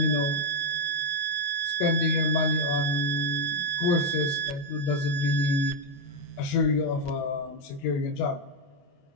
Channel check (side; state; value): right; late; 29 ms